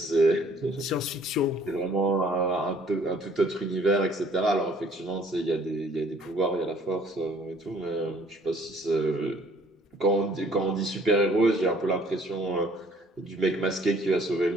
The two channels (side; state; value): both; normal; correlation 0.58